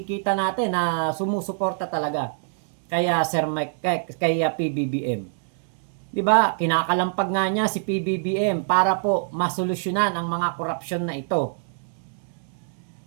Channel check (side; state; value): left; silent; digital silence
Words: natin na sumusuporta talaga kaya Sir Mike, kaya PBBM. 'Di ba? Kinakalampag nga niya si PBBM para po masolusyonan ang mga korupsyon na ito.